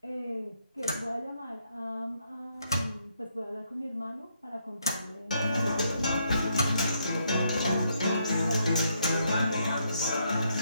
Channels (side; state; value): both; inverted; correlation -0.75